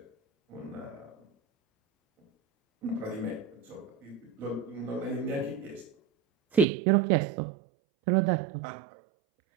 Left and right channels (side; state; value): left; drops out; at 6.7 s